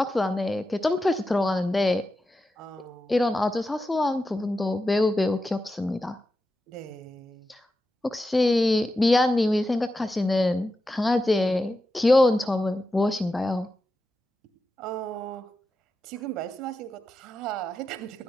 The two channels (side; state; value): both; normal; correlation 0.90